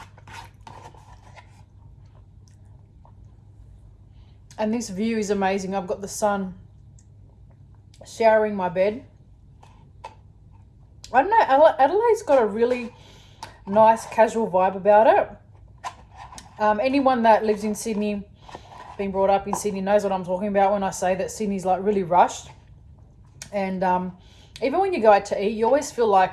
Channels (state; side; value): identical; both; correlation 1.00